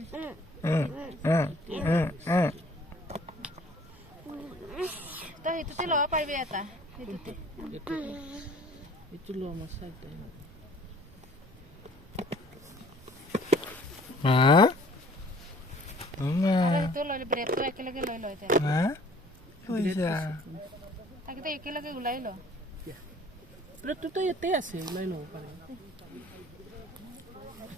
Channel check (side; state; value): both; normal; correlation 0.53